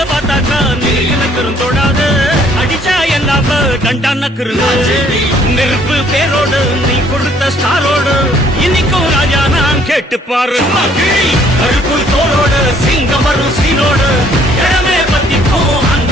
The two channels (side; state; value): both; normal; correlation 0.62